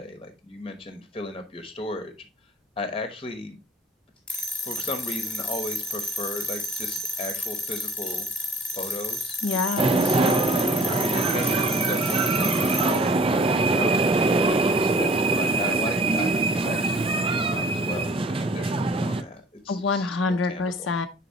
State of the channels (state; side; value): normal; both; correlation 0.49